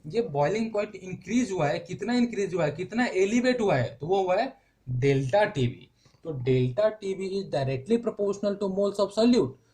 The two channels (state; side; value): identical; both; correlation 1.00